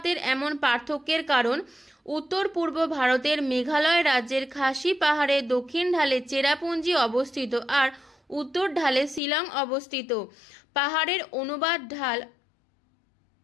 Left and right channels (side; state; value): right; drops out; at 9.2 s